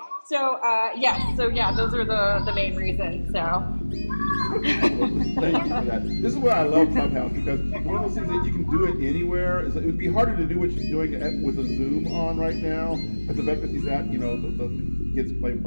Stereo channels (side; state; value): both; inverted; correlation -1.00